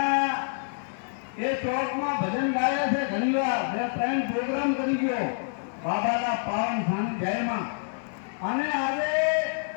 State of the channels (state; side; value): silent; right; 60 dB below the other